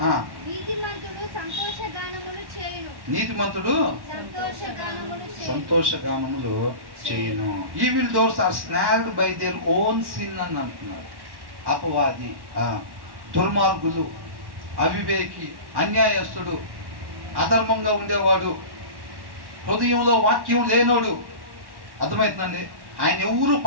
నీతిమంతుడు సంతోషగానములు చేయను. Evil doers are snared by their own sin అని అంటున్నారు. అపవాది, దుర్మార్గులు, అవివేకి, అన్యాయస్తుడు, అధర్మంగా ఉండేవాడు, హృదయంలో వాక్యం లేనోడు. అర్థమవుతుందండి? ఆయన ఎవరు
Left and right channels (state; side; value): late; left; 1.1 ms